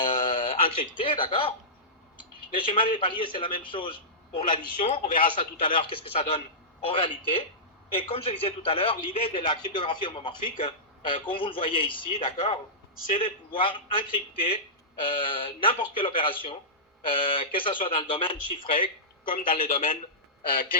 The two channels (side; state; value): both; normal; correlation -0.16